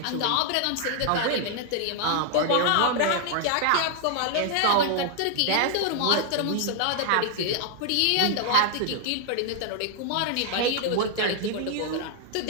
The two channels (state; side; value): different; both; correlation 0.00